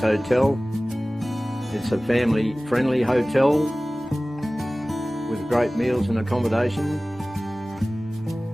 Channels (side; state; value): both; normal; correlation 0.98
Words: Hotel. It's a family-friendly hotel with great meals and accommodation.